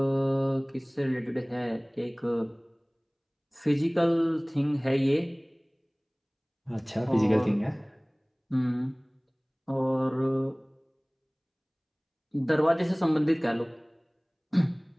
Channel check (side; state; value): both; identical; correlation 1.00